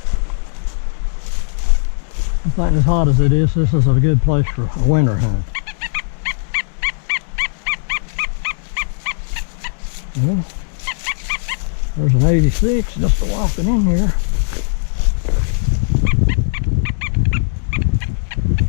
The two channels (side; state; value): right; silent; digital silence